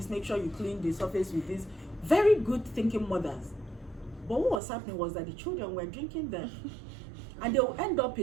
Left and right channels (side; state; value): left; drops out; at 4.6 s